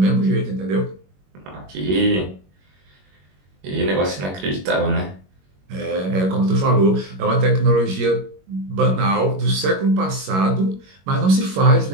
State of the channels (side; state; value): left; late; 21 ms